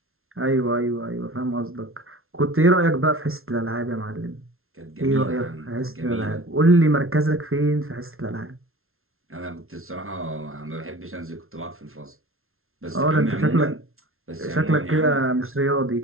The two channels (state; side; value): late; left; 0.62 ms